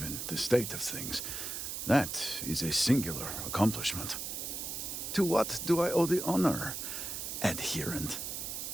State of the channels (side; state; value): right; noise; hiss, 5 dB below the sound